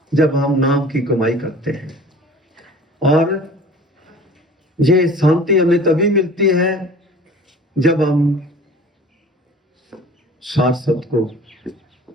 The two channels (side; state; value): both; normal; correlation 0.44